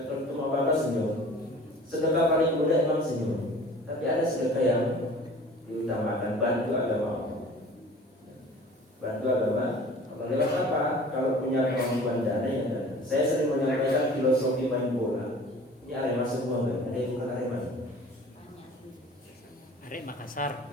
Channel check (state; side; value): normal; both; correlation 0.45